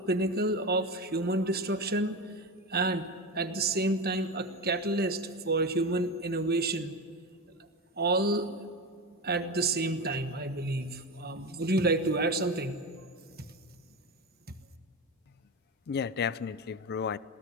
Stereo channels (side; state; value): both; normal; correlation 0.21